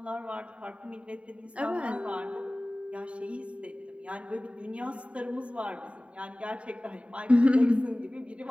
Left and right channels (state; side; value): late; left; 0.063 ms